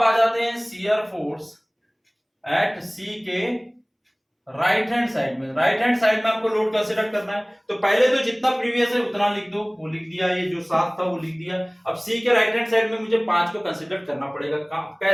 आ जाते हैं शियर फोर्स एट सी के राइट हैंड साइड में। राइट हैंड साइड में आपको लोड कंसीडर करना है, तो पहले तो जितना प्रीवियस है उतना लिख दो, वो लिख दिया, ये जो 7 था वो लिख दिया। अब सी के राइट हैंड साइड में मुझे 5 को कंसीडर करना पड़ेगा।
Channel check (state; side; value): identical; both; correlation 1.00